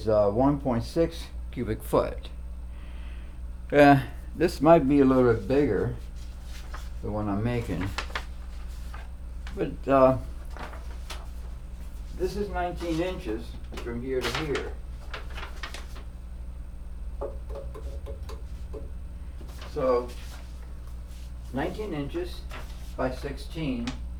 1.6 cubic foot. This might be a little bit bigger, the one I'm making. But this is 19 inches from here to here. So 19 inches by 16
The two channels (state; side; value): identical; both; correlation 1.00